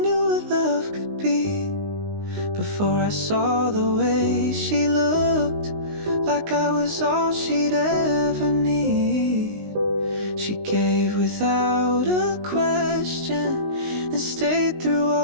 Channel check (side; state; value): left; late; 19 ms